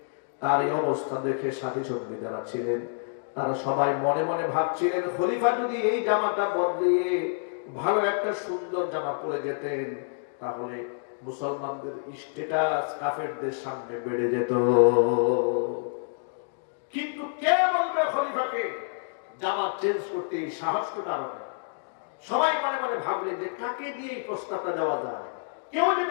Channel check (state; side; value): silent; right; digital silence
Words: তার এই অবস্থা দেখে সাথী সঙ্গী যারা ছিলেন তারা সবাই মনে মনে ভাবছিলেন, খলিফা যদি এই জামাটা বদলিয়ে ভালো একটা সুন্দর জামা পরে যেতেন, তাহলে মুসলমানদের স্ট্যাটাস কাফেরদের সামনে বেড়ে যেত। কিন্তু কে বলবে খলিফাকে জামা চেঞ্জ করতে? সাহস তো কারণ। সবাই মনে মনে ভাবলেন যে কাকে দিয়ে এই প্রস্তাবটা দেওয়া যায়, কেউ যেন